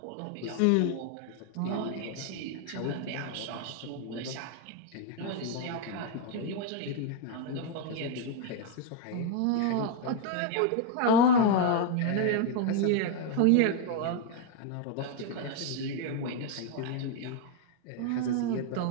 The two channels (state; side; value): different; both; correlation 0.01